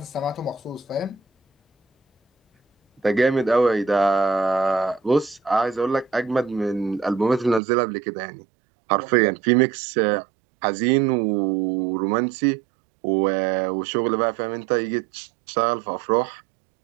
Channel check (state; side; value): drops out; left; at 7.6 s